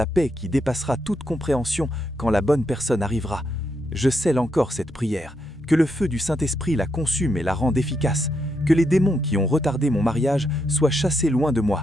paix qui dépassera toute compréhension quand la bonne personne arrivera. Je scelle encore cette prière. Que le feu du Saint-Esprit la consume et la rende efficace. Que les démons qui ont retardé mon mariage soient chassés loin de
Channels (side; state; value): both; normal; correlation 0.80